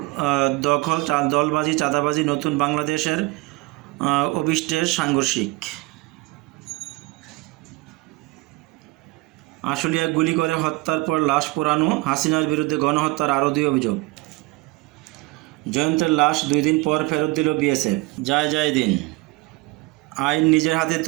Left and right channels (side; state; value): left; quieter; 23.2 dB